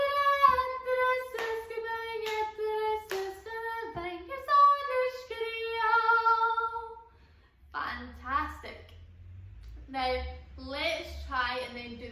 Fantastic. Now let's try and then do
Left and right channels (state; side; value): identical; both; correlation 1.00